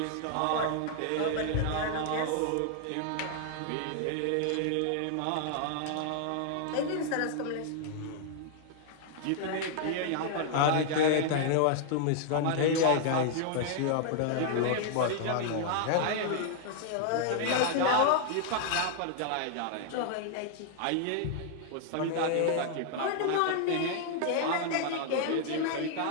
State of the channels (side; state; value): both; different; correlation 0.00